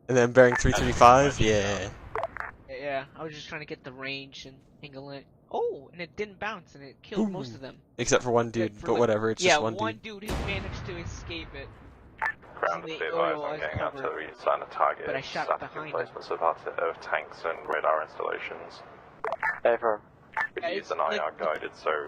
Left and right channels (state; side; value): identical; both; correlation 1.00